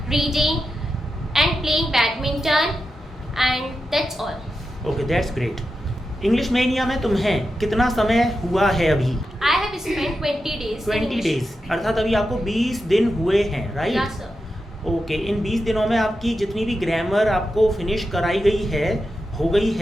reading and playing badminton, and that's all. Okay, that's great. English mania में तुम्हें कितना समय हुआ है अभी? I have spent 20 days. 20 days, अर्थात अभी आपको 20 दिन हुए हैं, राइट? Yes, sir. ओके, इन 20 दिनों में आपकी जितनी भी ग्रामर आपको फिनिश कराई गई है, हो गई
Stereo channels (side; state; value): both; normal; correlation 0.89